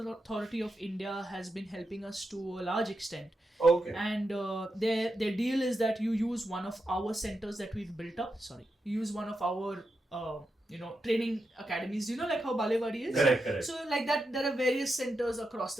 of India has been helping us to a large extent. Okay. And their deal is that you use one of our centers that we've built up. You use one of our training academies, like how Balewadi is. Correct. So like that, there are various centers across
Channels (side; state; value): both; normal; correlation 0.87